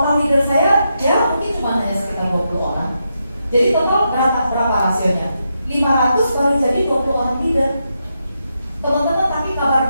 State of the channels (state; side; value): inverted; both; correlation -0.84